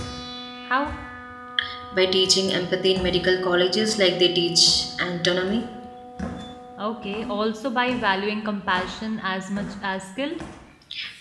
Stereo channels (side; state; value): both; identical; correlation 1.00